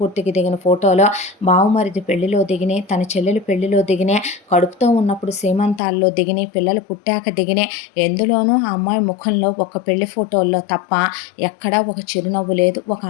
దిగిన ఫోటోలు, బావుమరిది పెళ్లిలో దిగినాయి, తన చెల్లెలు పెళ్లిలో దిగినాయి, కడుపుతో ఉన్నప్పుడు సీమంతాల్లో దిగినాయి, పిల్లలు పుట్టాక దిగినాయి. ఎందులోనూ ఆ అమ్మాయి ముఖంలో ఒక పెళ్లి ఫోటోల్లో తప్ప ఎక్కడా ఒక చిరునవ్వు లేదు, ఒక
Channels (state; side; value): drops out; right; at 5.8 s